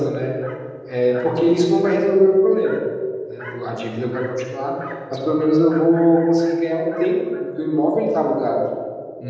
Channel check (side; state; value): both; identical; correlation 1.00